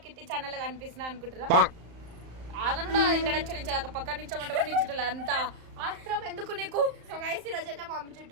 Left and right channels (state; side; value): late; left; 35 ms